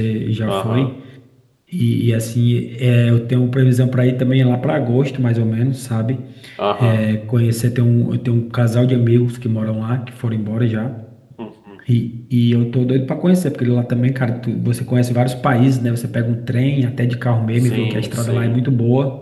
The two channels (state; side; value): identical; both; correlation 1.00